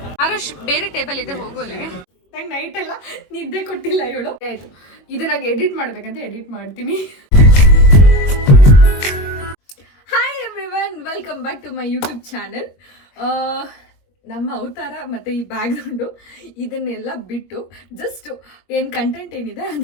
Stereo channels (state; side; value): late; right; 21 ms